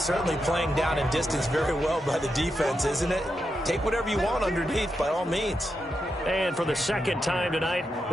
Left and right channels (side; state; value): both; normal; correlation 0.86